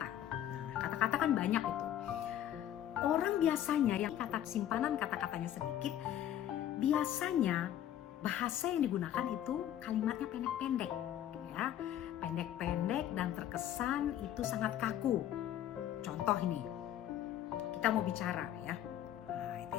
Kata-kata kan banyak itu. Orang biasanya yang simpanan kata-katanya sedikit, biasanya bahasa yang digunakan itu kalimatnya pendek-pendek, ya. Pendek-pendek dan terkesan itu sangat kaku. Contoh ini, kita mau bicara, ya.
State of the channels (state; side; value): quieter; right; 11.4 dB